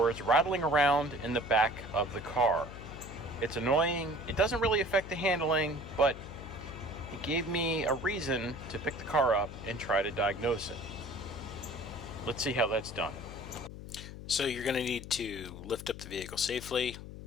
rattling around in the back of the car. It's annoying. It doesn't really affect the handling, but it gave me a reason to pick the car up and try to diagnose it. Let's see how that's done. So you're going to need to lift up the vehicle safely,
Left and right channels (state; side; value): noise; left; hum, 12 dB below the sound